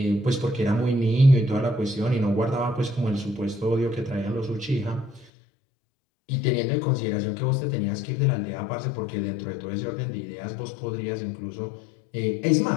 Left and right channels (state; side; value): drops out; right; at 5.3 s